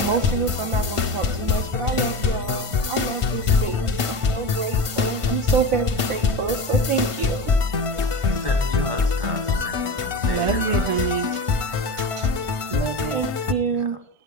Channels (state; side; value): late; left; 1.5 ms